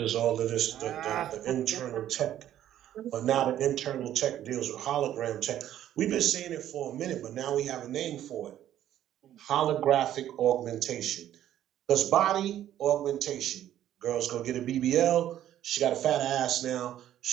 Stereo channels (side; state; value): left; quieter; 11.8 dB